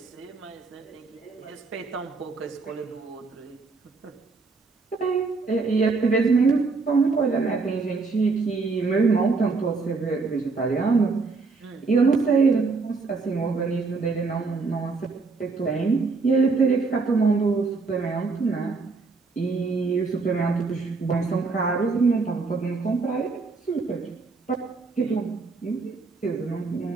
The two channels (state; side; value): quieter; left; 4.2 dB